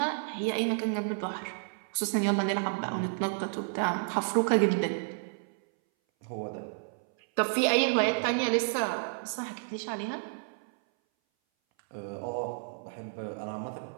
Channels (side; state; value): left; silent; 57 dB below the other